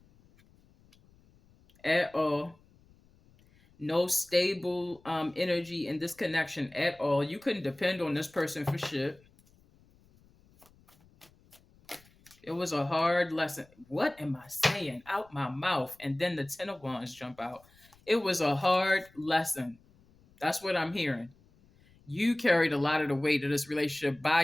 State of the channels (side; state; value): left; noise; rumble, 29 dB below the sound